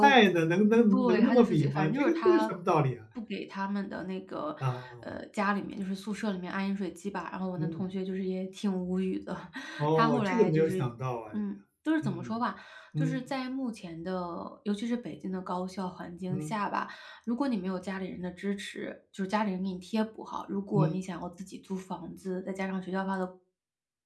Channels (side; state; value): both; identical; correlation 1.00